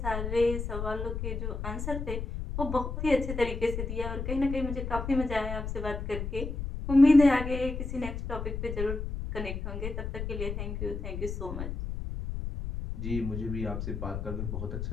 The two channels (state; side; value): noise; left; rumble, 4 dB below the sound